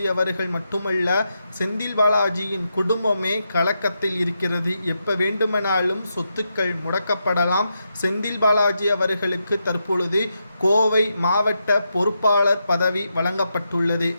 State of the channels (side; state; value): both; inverted; correlation -0.84